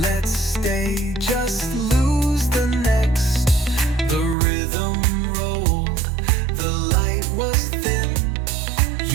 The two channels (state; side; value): drops out; left; at 4.4 s